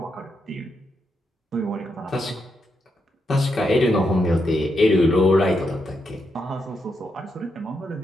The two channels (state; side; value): normal; both; correlation 0.82